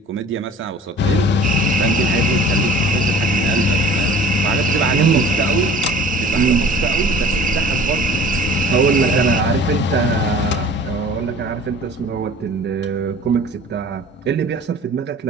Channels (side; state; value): both; normal; correlation 0.46